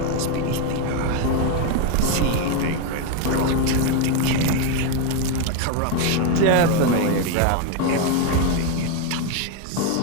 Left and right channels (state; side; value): different; both; correlation 0.02